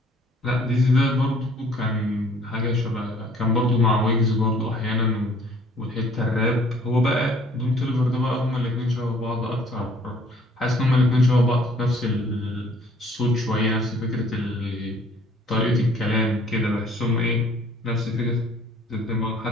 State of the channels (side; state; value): both; normal; correlation 0.57